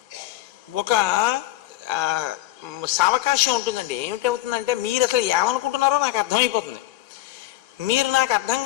ఒక సావకాశం ఉంటుందండి. ఏమిటవుతుందంటే, మీరు అసలు ఏమనుకుంటున్నారో నాకు అర్థమైపోతుంది. మీరు నాకు అర్థం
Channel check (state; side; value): quieter; right; 15.6 dB